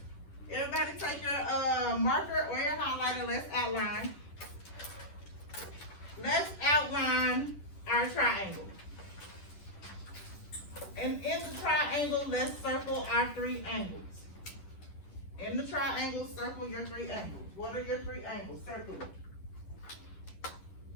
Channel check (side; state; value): right; late; 10 ms